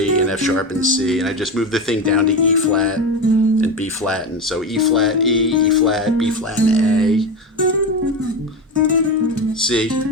and F sharp and C, and I just move the thing down to E flat and B flat, and so E flat, E, E flat, B flat, and A, C,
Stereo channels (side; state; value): both; normal; correlation 0.20